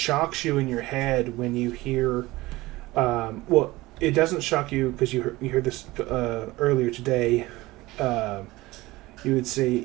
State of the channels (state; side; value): quieter; left; 19.6 dB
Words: you in your head when you hear, it doesn't shock you because you heard this earlier today. You